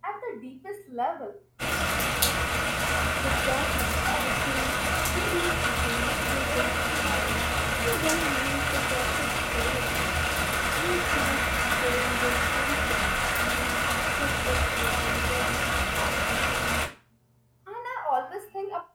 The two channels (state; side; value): identical; both; correlation 1.00